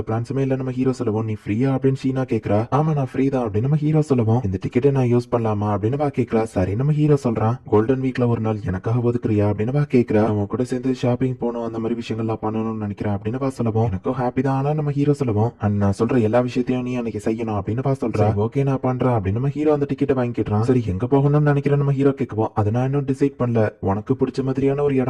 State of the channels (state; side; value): identical; both; correlation 1.00